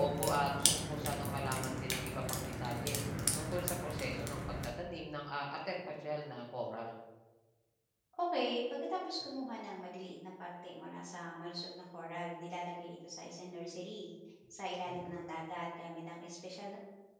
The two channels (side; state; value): both; identical; correlation 1.00